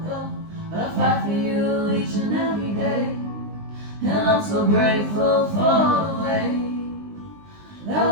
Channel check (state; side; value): late; left; 19 ms